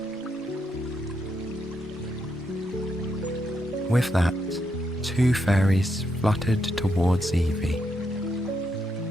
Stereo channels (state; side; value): normal; both; correlation 0.80